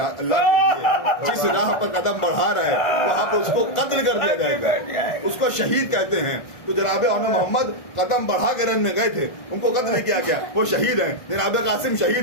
जिस राह पर कदम बढ़ा रहा है वहां पर उसको कत्ल कर दिया जाएगा, उसको शहीद कहते हैं। तो जनाब मोहम्मद कदम बढ़ा के रन में गए थे, उनको कत्ल नहीं किया गया, वो शहीद हैं। जनाब कासिम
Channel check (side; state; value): right; late; 1.6 ms